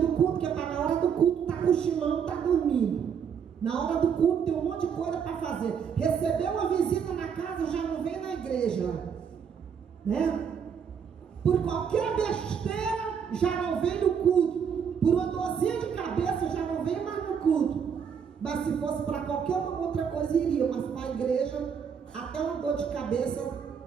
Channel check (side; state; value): left; quieter; 7.3 dB